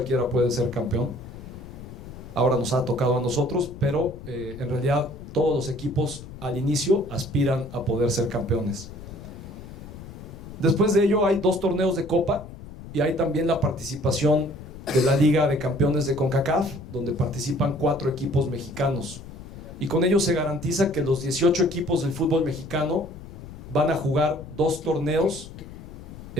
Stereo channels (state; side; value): noise; left; rumble, 14 dB below the sound